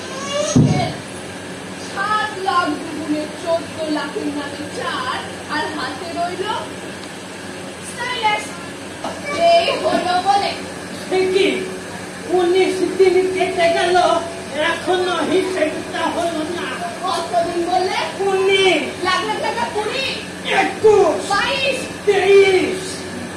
7 লাখ দুগুণে 14 লাখের নামে 4 আর হাতে রইল স্টাইলাস। এই হলো বলে কি 19 দিন কেটে গেল, এখনো হিসেবটা হলো না। কতদিন বললে? 19 লাখ লাখ টাকা 20 21 22 23।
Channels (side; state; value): both; identical; correlation 1.00